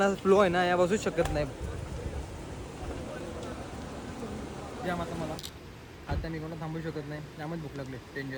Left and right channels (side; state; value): both; identical; correlation 1.00